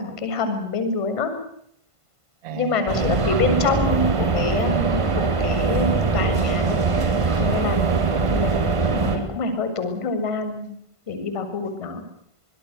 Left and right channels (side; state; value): left; late; 1.5 ms